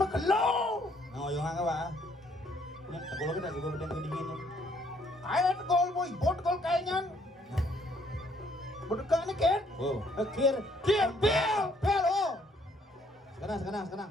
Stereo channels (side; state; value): both; normal; correlation 0.66